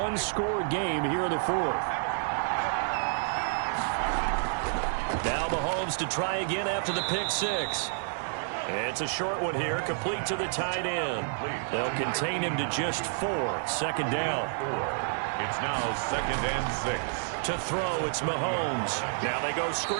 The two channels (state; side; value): silent; left; digital silence